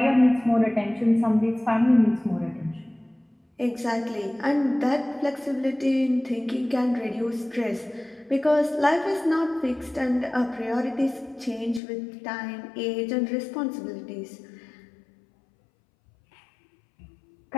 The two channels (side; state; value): right; drops out; at 11.8 s